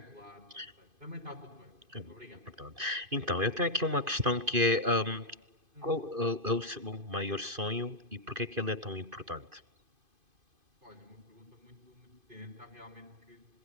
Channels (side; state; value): left; late; 2.5 ms